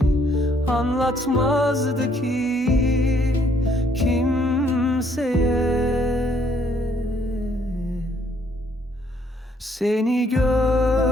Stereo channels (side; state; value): both; normal; correlation 0.67